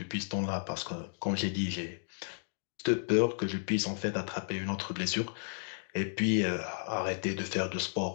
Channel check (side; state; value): right; silent; digital silence